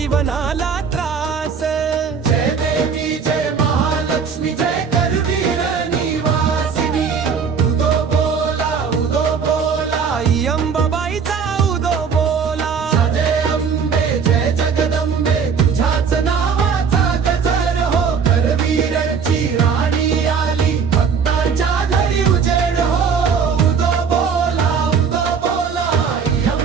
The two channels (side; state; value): left; quieter; 6.2 dB